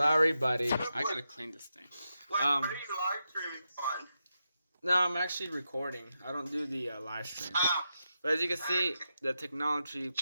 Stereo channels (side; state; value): both; inverted; correlation -0.87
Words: buddy. I gotta clean this thing. What are you live streaming on? No, I'm actually recording. I don't do the live stream. But as you can see, the Technology